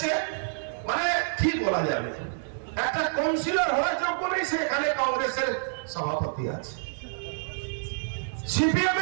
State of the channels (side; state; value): left; silent; 59 dB below the other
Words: মানে কি বলা যাবে, একটা কাউন্সিলর হওয়ার যোগ্য নেই, সে এখানে কংগ্রেসের সভাপতি আছে। সিপিএম